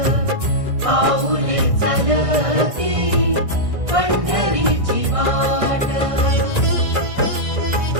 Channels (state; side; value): late; left; 1.6 ms